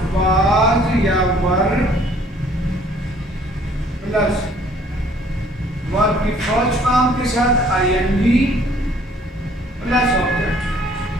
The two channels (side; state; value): both; normal; correlation 0.58